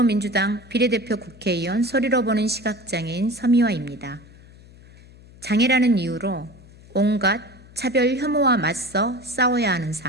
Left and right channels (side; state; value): left; noise; hum, 22 dB below the sound